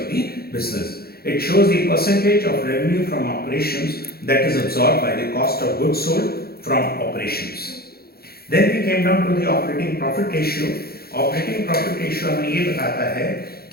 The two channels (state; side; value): late; right; 0.45 ms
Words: the business. It shows the percentage of revenue from operations that is absorbed by the cost of goods sold from operations. Then we came down to the operating profit ratio. Operating profit ratio हमें ये बताता है